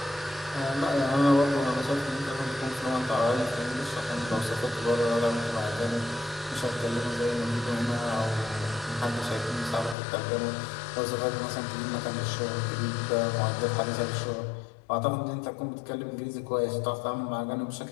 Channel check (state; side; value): drops out; right; at 10.0 s